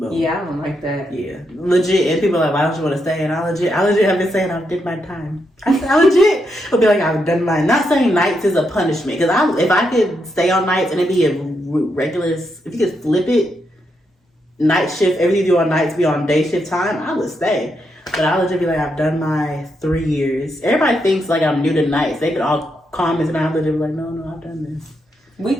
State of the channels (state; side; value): normal; both; correlation 0.81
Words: Yeah, I don't like that. Yeah, legit. And people are like, why don't you want to stay? And I legit have been saying I did my time. I legit would be like, I've done mine. Not saying nights is a punishment, because if I could stay on nights and it'd be a regular, if you could flip it. Night shift, everything you do on nights be on day shift time, I would stay. But I would just be like, I've done my 3 years. Everybody thinks like I'm new to nights. They could all comment and I would just be like, no, I've done this. We